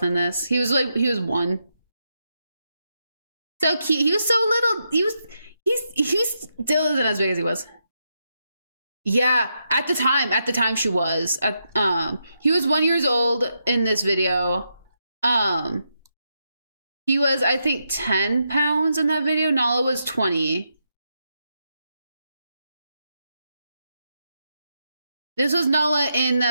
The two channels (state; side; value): inverted; both; correlation -0.83